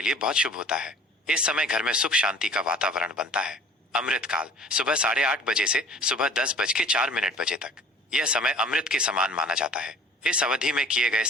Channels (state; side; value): normal; both; correlation 0.48